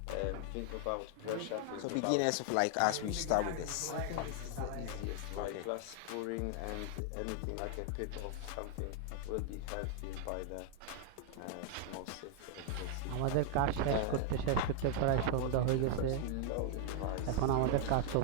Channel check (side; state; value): both; different; correlation 0.00